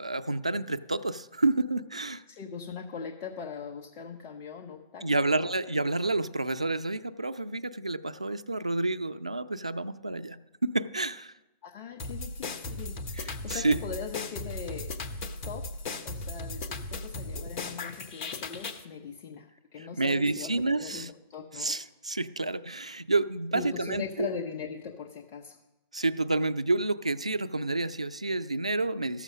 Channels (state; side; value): inverted; both; correlation -0.75